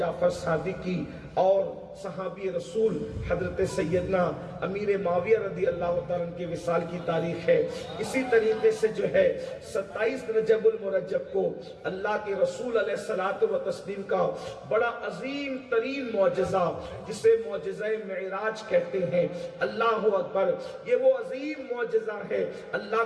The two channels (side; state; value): both; identical; correlation 1.00